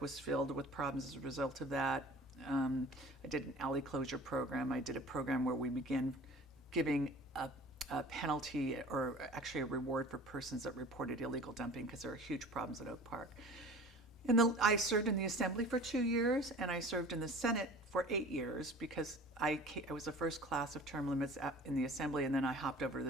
was filled with problems as a result of that. I did an alley closure program. I did a program where we began giving a penalty or actually a reward for persons that reported illegal dumping because there are huge problems at Oak Park. I served in the Assembly for 2 years, and I served in the Senate for 8 years because I was the first class of term limits in the Assembly, and then I hopped over to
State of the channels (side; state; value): both; normal; correlation 0.43